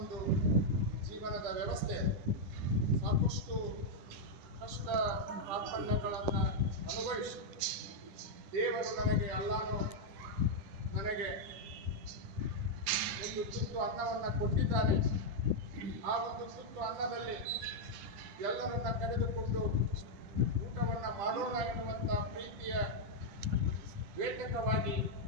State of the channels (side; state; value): left; late; 10 ms